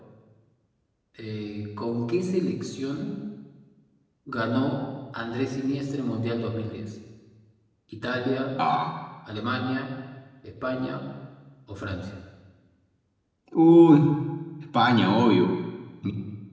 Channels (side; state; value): both; identical; correlation 1.00